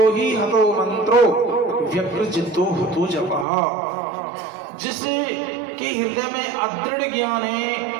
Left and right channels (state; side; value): drops out; left; at 3.5 s